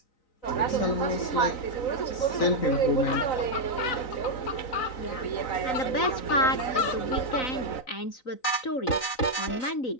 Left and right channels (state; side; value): late; right; 3.9 ms